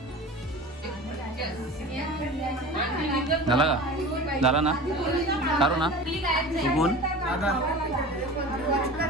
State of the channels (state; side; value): normal; both; correlation 0.36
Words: झाला का झाला ना काढू ना तू कोण